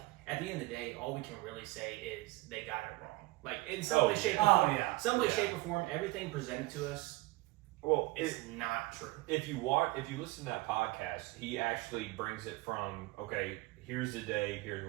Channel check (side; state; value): left; quieter; 21.2 dB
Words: at the end of the day, all we can really say is they got it wrong. Like in some way, shape, or Oh, form, yeah. some way, shape, or form, everything presented to us Well, is not true. if you listen to that podcast, he actually brings it from, okay, here's the day, here's